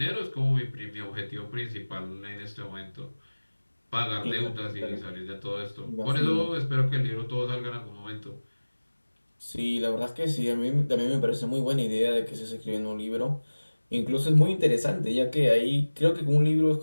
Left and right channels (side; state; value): both; inverted; correlation -1.00